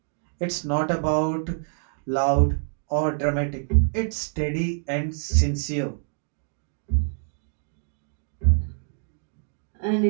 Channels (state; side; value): silent; left; 61 dB below the other